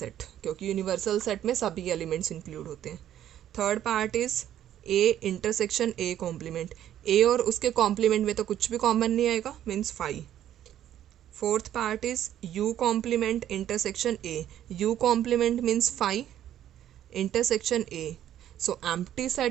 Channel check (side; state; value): left; quieter; 11.4 dB